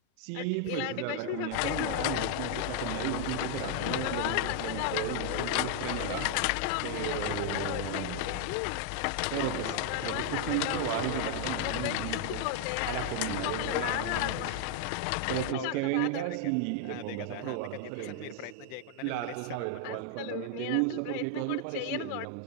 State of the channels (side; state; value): both; different; correlation 0.00